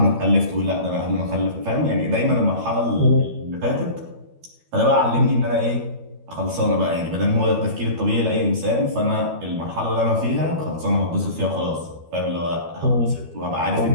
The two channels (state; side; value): late; left; 12 ms